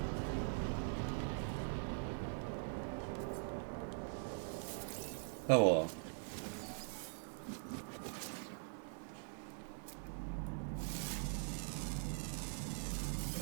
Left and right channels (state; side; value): silent; left; digital silence